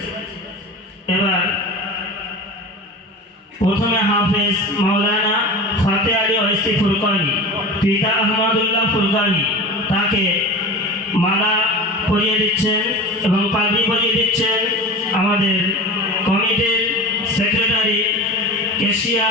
এবার প্রথমে হাফেজ মাওলানা ফাতে আলী ওয়াইসি ফুরকানি পিতা আহমদুল্লাহ ফুরকানি তাকে মালা পরিয়ে দিচ্ছেন এবং পাগড়ি পরিয়ে দিচ্ছেন আমাদের কমিটির সেক্রেটারি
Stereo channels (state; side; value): normal; both; correlation 0.32